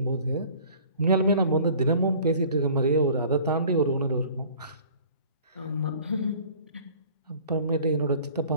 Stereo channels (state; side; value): inverted; both; correlation -0.49